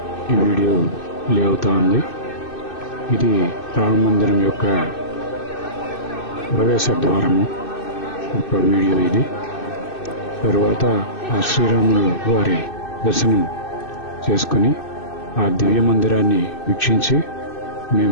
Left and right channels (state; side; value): late; right; 2.6 ms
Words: ఈ వీడియో ప్లే అవుతా ఉంది. ఇది రామ మందిరం యొక్క ప్రవేశ ద్వారము ఒక వీడియో ఇది. తరువాత ఆ శ్రీరాములు వారి దర్శనం చేసుకుని ఆ దివ్య మందిరాన్ని వీక్షించి